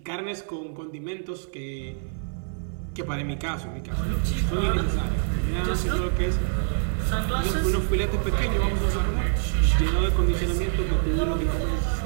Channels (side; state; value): left; silent; digital silence